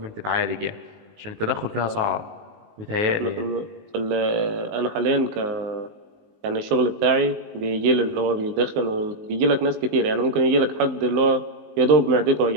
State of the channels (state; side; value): late; left; 19 ms